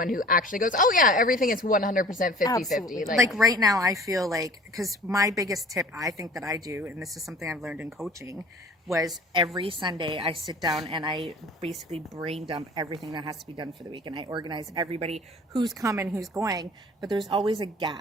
who actually goes, oh yeah, everything is 100% 50-50. Absolutely. Like right now, I feel like, because my biggest tip I think that I do, and this is something I've learned in coaching, was every Sunday I sit down and I basically brain dump everything that has to be done for the week, and I organize everybody who's coming, who's going, but there's always a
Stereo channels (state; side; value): normal; both; correlation 0.46